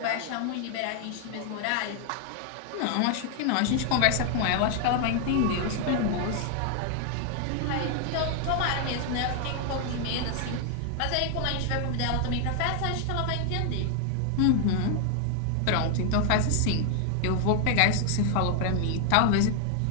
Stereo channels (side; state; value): both; different; correlation 0.00